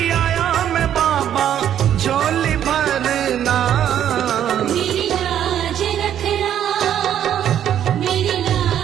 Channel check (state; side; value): quieter; left; 10.3 dB